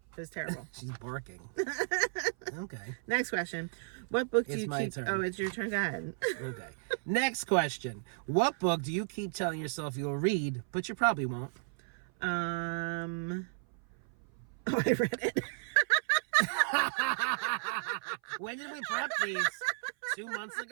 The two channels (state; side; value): silent; left; 55 dB below the other